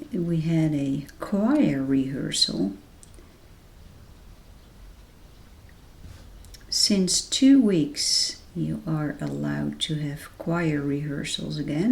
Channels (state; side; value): identical; both; correlation 1.00